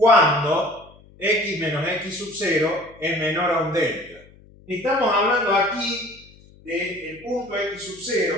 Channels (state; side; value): noise; left; hum, 25 dB below the sound